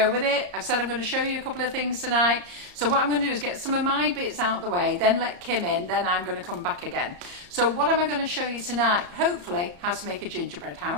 with it. I've said I'm going to show you a couple of things tonight. So what I'm going to do is get some of my bits out the way, then let Kim in, then I'm going to come back again. So what am I going to show you tonight? Hopefully how to make a gingerbread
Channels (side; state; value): left; late; 34 ms